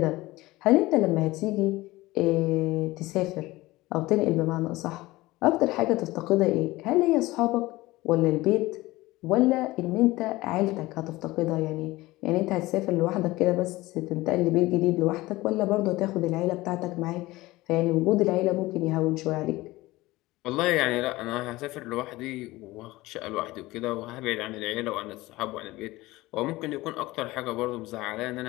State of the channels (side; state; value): right; quieter; 19.3 dB